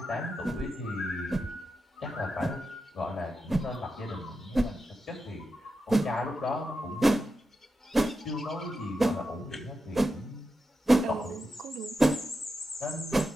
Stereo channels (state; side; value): normal; both; correlation 0.88